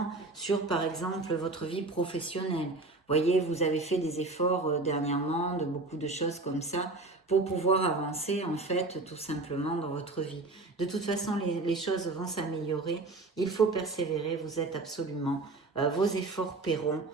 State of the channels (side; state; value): left; quieter; 3.2 dB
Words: sur par exemple votre vie professionnelle. Vous voyez, vous avez fait des efforts dernièrement, de beaucoup de choses comme ça, pour pouvoir avancer en fait tout simplement dans votre vie. De toute façon, les choses vont s'améliorer. Il faut persévérer, vous êtes absolument, vos efforts paieront.